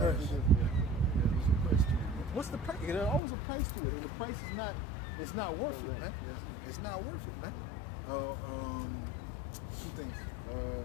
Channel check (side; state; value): right; drops out; at 3.2 s